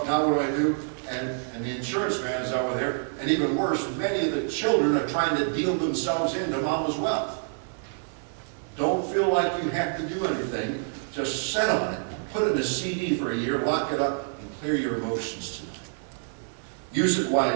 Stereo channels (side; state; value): left; silent; digital silence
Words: now what do I do? And the insurance man is over there. And even worse, many of the children are trying to deal themselves into mama's wealth. Don't feel like you have to do anything. Just sit on it. Put it in a CD for a year, lock it up, and clear your emotions tonight. Use it